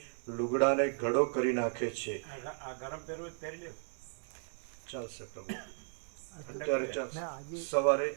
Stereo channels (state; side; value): silent; left; 54 dB below the other